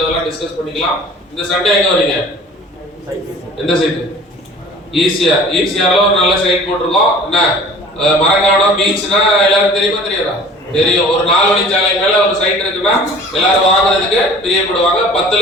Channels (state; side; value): normal; both; correlation 0.46